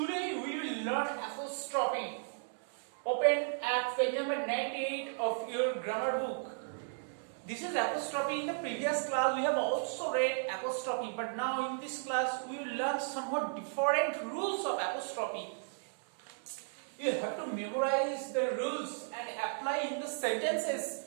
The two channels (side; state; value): left; silent; digital silence